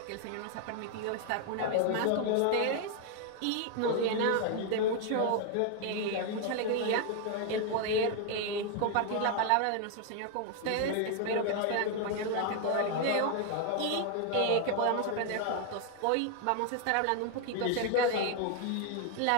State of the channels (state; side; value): different; both; correlation 0.00